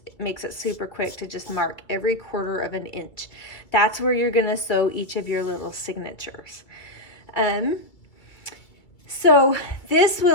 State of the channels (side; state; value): right; late; 2.1 ms